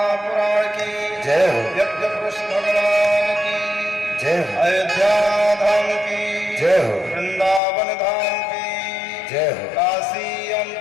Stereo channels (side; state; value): right; drops out; at 7.6 s